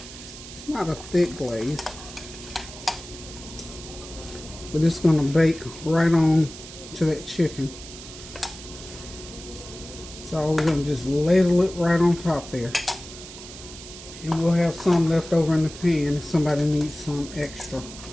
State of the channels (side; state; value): right; noise; hiss, 14 dB below the sound